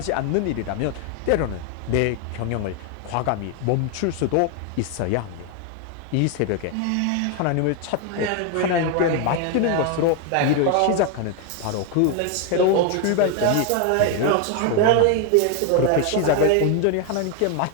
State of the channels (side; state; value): both; different; correlation 0.01